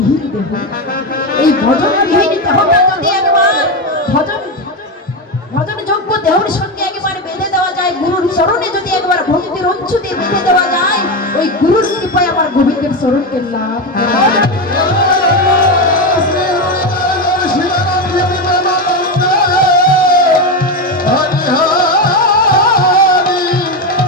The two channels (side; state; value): both; normal; correlation 0.14